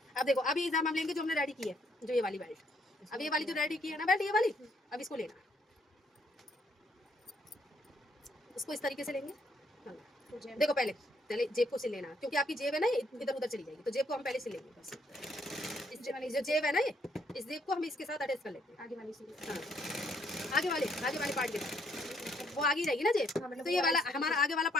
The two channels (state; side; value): normal; both; correlation 0.70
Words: अब देखो अभी एग्जाम हम लेंगे जो हमने रेडी की है, जो ये वाली बेल्ट, अब ये वाली जो रेडी की है ना बेल्ट, ये वाली, अब इसको लेना, उसको इस तरीके से लेंगे। देखो पहले पहले जेब को सिल लेना, क्योंकि आपकी जेब है ना ये इधर उधर चली जाएगी, तो जेब को हम पहले सिल लेंगे बस। इस जो जेब है ना ये, इस जेब को हम इसके साथ अटैच कर लेते हैं, आगे वाली से। हाँ आगे वाले पार्ट के साथ, वो आगे ही रहेगी ना जेब, तो ये वाला हमारा आगे वाला